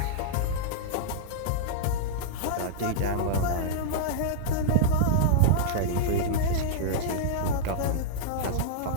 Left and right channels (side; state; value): both; different; correlation -0.02